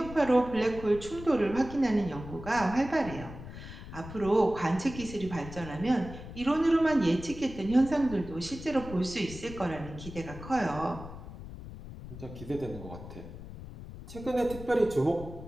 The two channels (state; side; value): noise; left; rumble, 12 dB below the sound